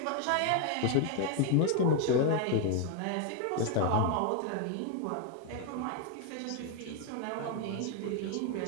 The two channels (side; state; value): both; different; correlation 0.01